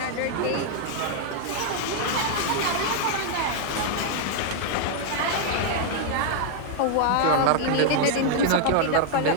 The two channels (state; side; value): different; both; correlation 0.00